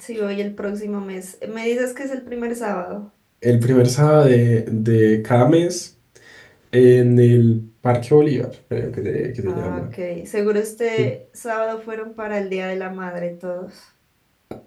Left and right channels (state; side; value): identical; both; correlation 1.00